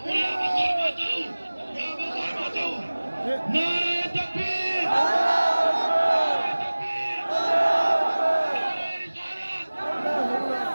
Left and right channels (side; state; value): both; inverted; correlation -1.00